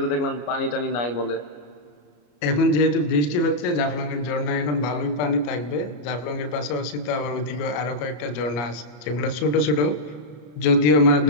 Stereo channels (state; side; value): late; right; 34 ms